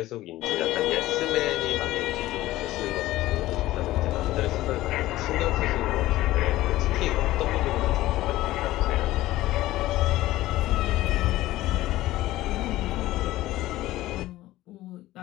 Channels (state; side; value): quieter; right; 16.3 dB